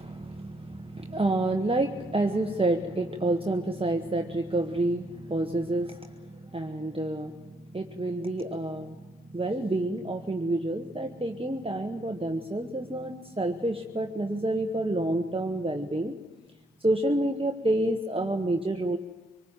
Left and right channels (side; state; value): both; normal; correlation 0.73